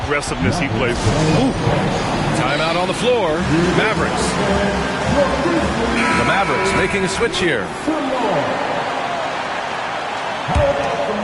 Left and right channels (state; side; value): identical; both; correlation 1.00